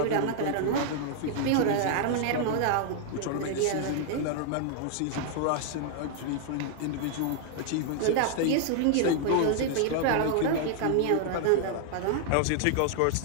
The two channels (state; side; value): different; both; correlation 0.00